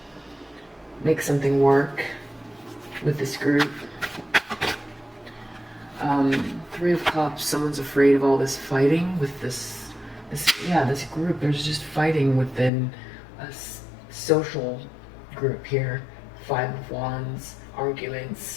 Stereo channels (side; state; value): right; drops out; at 12.7 s